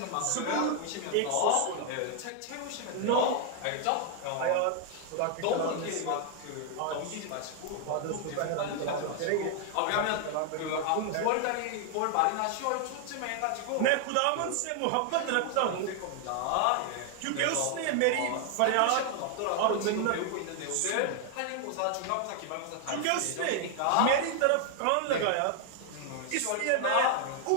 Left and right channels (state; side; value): different; both; correlation 0.00